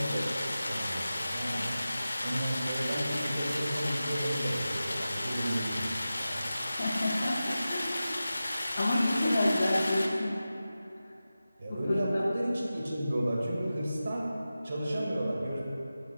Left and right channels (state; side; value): inverted; both; correlation -0.94